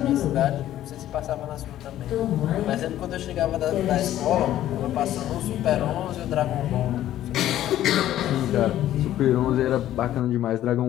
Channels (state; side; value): quieter; right; 12.8 dB